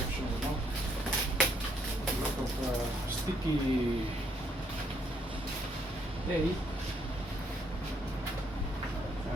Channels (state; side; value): normal; both; correlation 0.71